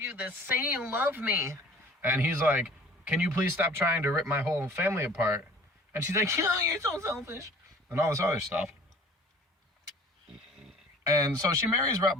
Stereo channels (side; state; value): both; normal; correlation 0.48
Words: this. Say you love me. And he's like, can you please stop trying to rip my whole family apart? And she's like, oh, you're so selfish. And all this other stuff. And so she marries Rhett